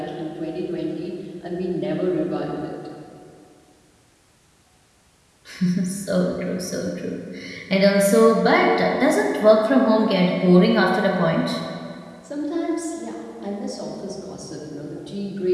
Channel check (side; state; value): both; identical; correlation 1.00